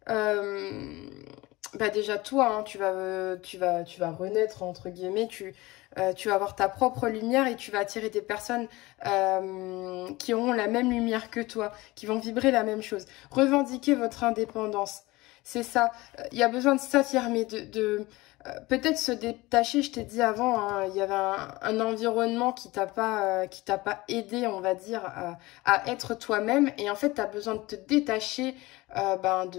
Déjà toi, hein, tu vas renaître entre guillemets, tu vas avoir ta propre lumière et tu vas attirer des personnes qui auront la même lumière que toi, qui vont vibrer la même chose. Revendiquer votre indépendance, c'est ça. Il y a besoin de s'affirmer, peut-être se détacher. Je t'ai dit avant, hein, il y avait un environnement qui t'a pas aidé, on va dire, à être toi-même. Et en fait, tu as besoin de te détacher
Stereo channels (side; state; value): right; quieter; 20.7 dB